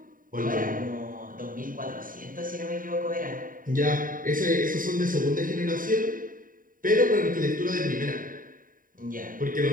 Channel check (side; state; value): left; late; 0.40 ms